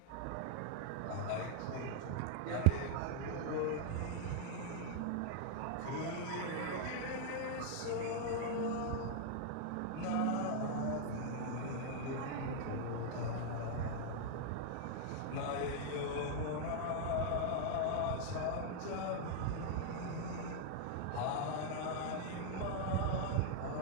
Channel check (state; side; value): different; both; correlation 0.00